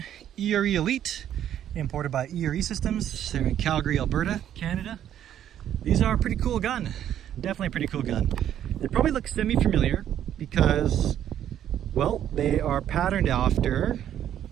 ERE Elite, imported by ERE Systems. They're in Calgary, Alberta, Canada. These are a pretty cool gun. Definitely a pretty cool gun. They probably look semi-familiar because, well, they are patterned after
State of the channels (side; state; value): left; quieter; 10.6 dB